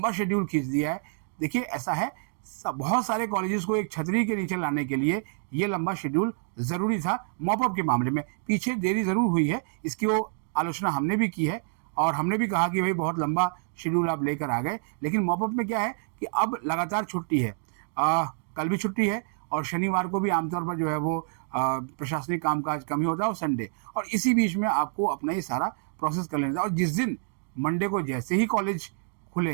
शेड्यूल खींच दिया है। देखिए ऐसा है, बहुत सारे कॉलेजेस को एक छतरी के नीचे लाने के लिए ये लंबा शेड्यूल ज़रूरी था। मॉपअप के मामले में पीछे देरी ज़रूर हुई है, इसकी वो आलोचना हमने भी की है और हमने भी कहा कि भाई बहुत लंबा शेड्यूल आप लेकर आ गए। लेकिन मॉपअप में क्या है कि अब लगातार छुट्टी है, कल भी छुट्टी है और शनिवार को भी आमतौर पर जो है वो प्रशासनिक कामकाज कम ही होता है और संडे, और इसी बीच में आपको अपना ये सारा प्रोसेस कर लेना था। और जिस दिन मंडे को जैसे ही कॉलेज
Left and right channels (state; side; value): silent; left; digital silence